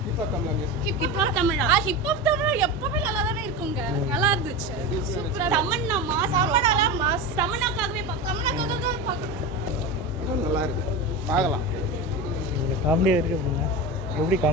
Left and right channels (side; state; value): both; normal; correlation 0.23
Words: ஹிப்ஹாப் தமிழா ஹிப்ஹாப் தமிழா எப்பவுமே நல்லா தானே இருக்குங்க. நல்லா இருந்துச்சு. சூப்பரா தமன்னா மாஸ் தமன்னாக்காகவே நல்லா இருக்கு. பார்க்கலாம். காமெடியா இருக்கு அப்படின்னா எப்படி